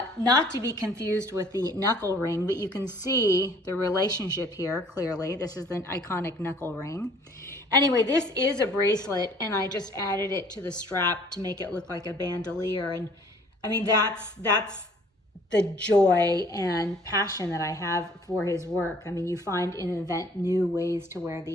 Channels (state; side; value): normal; both; correlation 0.56